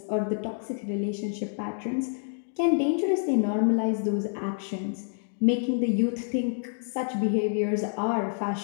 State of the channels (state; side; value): silent; right; digital silence